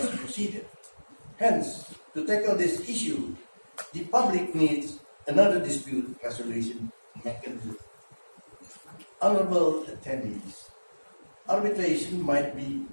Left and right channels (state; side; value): inverted; both; correlation -1.00